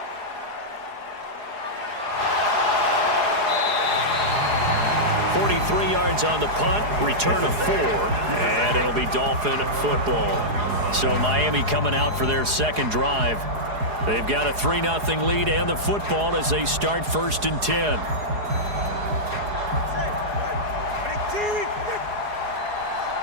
Yards on the punt, return of 4, and it'll be Dolphin football. So Miami coming out for their second drive. They've got a 3-0 lead and the football as they start 1st and 10.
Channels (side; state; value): left; late; 4.8 ms